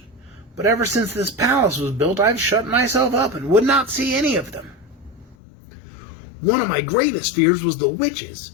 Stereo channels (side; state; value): right; drops out; at 5.4 s